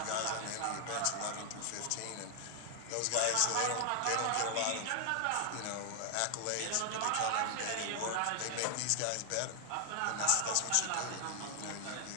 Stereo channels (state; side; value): different; both; correlation 0.00